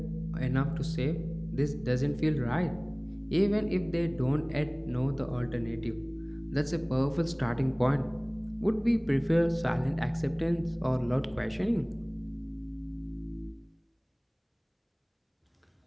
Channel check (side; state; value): both; identical; correlation 1.00